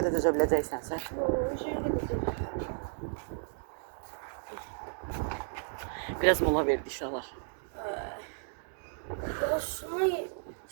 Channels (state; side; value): silent; left; 56 dB below the other